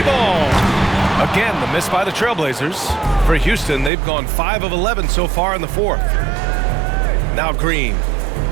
Again, the miss by the Trailblazers. For Houston, they've gone 5 of 11 so far in the fourth. Now Green.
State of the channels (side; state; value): left; drops out; at 3.9 s